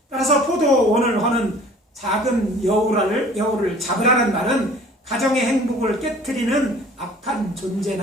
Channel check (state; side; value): normal; both; correlation 0.49